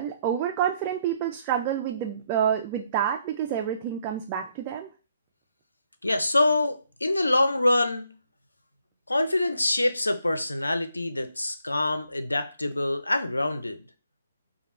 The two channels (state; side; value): inverted; both; correlation -0.74